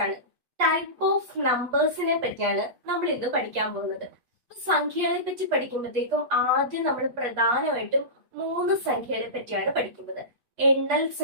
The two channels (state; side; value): late; left; 8.3 ms